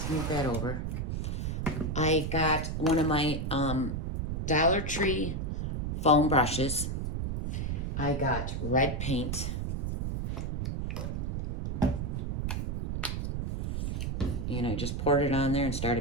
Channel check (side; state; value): right; noise; rumble, 1 dB below the sound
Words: move that over. I got one of my Dollar Tree foam brushes. I got red paint. And I just poured it on there and